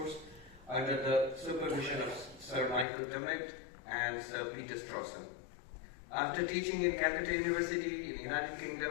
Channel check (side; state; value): right; drops out; at 2.9 s